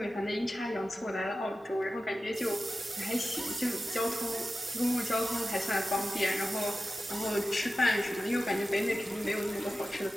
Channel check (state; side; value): normal; both; correlation 0.94